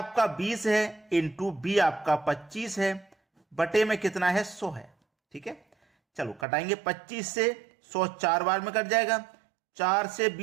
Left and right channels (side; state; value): left; drops out; at 6.5 s